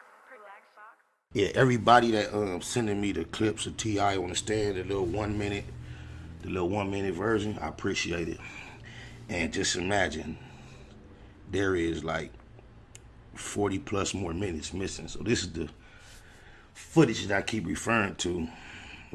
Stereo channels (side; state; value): both; identical; correlation 1.00